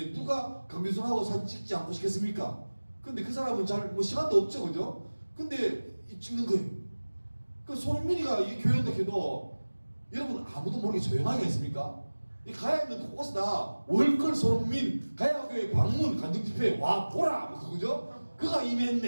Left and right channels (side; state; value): both; inverted; correlation -1.00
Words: 누가 강규성하고 사진 찍지 않고 싶겠습니까? 근데 그 사람은 잘 뭐 시간도 없죠, 그죠? 근데 찍는 거예요. 그 손흥민이가 이 교회인데 해도 여러분 아무도 모르게 조용하게 했습니까? 이 가야 있는 곳곳에 다 월클 손흥민 가야교회 방문 간증 집회 와 보라 뭐 그거죠? 그가